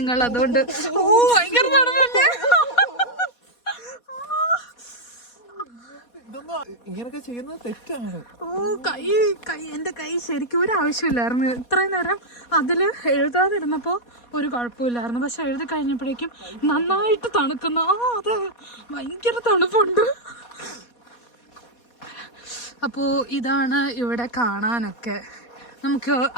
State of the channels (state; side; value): late; right; 4.2 ms